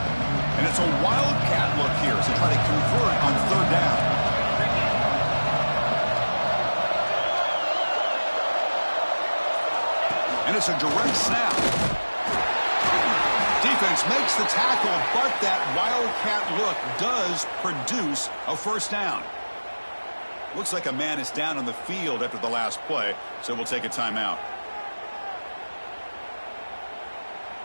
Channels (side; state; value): both; inverted; correlation -1.00